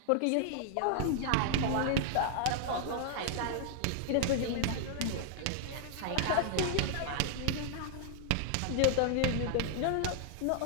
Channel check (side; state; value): both; different; correlation 0.00